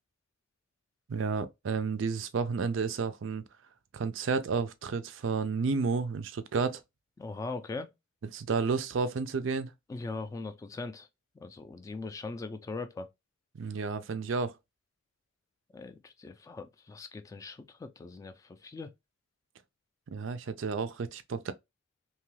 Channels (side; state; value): left; quieter; 3.8 dB